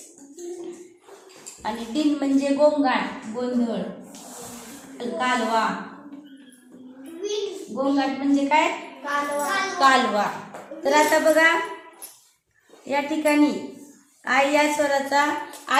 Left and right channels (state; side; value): identical; both; correlation 1.00